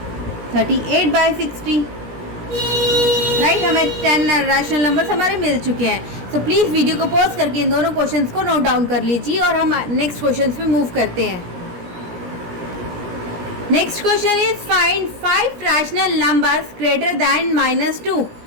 38/60। राइट, हमें 10 रैशनल नंबर्स हमारे मिल चुके हैं। सो प्लीज़ वीडियो को पॉज करके इन दोनों क्वेश्चंस को नोट डाउन कर लीजिए और हम नेक्स्ट क्वेश्चंस पे मूव करते हैं। Next question is find 5 rational numbers greater than -2।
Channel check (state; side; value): late; left; 17 ms